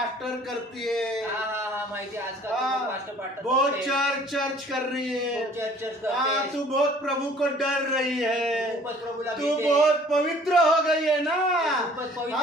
करती है, हाँ हाँ हाँ माहिती आहे, आजकाल हाँ, खूप पास्ट बहुत चर्च चर्च कर रही है, चर्च हाँ करते, तू बहुत प्रभु को डर रही है, खूपच प्रभूला तू भीते. बहुत पवित्र हो गई है ना, खूपच पवित्र हाँ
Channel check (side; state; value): both; normal; correlation 0.54